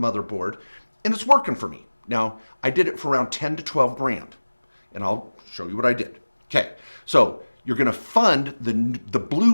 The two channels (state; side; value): inverted; both; correlation -1.00